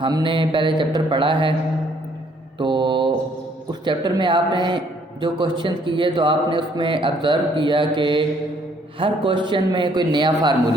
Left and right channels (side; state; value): both; normal; correlation 0.65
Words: نے پہلے چیپٹر پڑھا ہے، تو اس چیپٹر میں آپ نے جو کوشچن کیے تو آپ نے اس میں آبزرو کیا کہ ہر کوشچن میں کوئی نیا